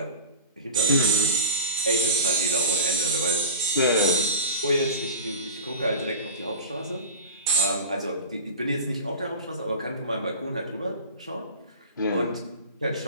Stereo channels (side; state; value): both; inverted; correlation -0.33